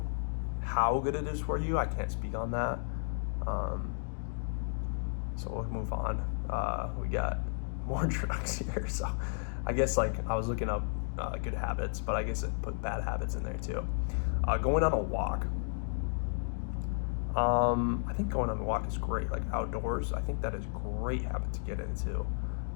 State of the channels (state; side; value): silent; right; digital silence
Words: how good it is for you. I can't speak on that. So we'll move on. We got more drugs here. So I guess like I was looking up good habits, but I guess it put bad habits in there too. Going on a walk. I think going on a walk is great, like outdoors. I think that is a great habit to get into.